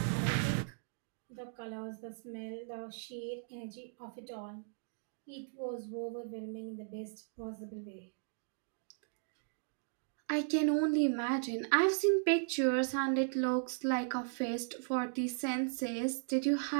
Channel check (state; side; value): silent; left; digital silence